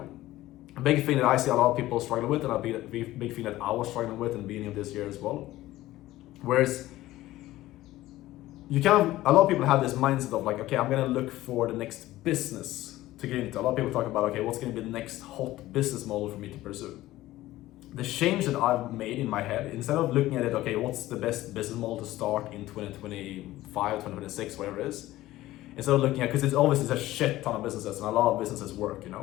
A big thing that I see a lot of people struggle with, and a big thing that I was struggling with in the beginning of this year as well. Whereas a lot of people have this mindset of like, okay, I'm gonna look for the next business to get into. A lot of people talk about, okay, what's gonna be the next hot business model for me to pursue? The change that I've made in my head, instead of looking at it, okay, what's the best business model to start in 2025, 2026, whatever it is, instead of looking at, because it's obviously a shit ton of businesses and a lot of businesses work,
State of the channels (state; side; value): quieter; right; 16.1 dB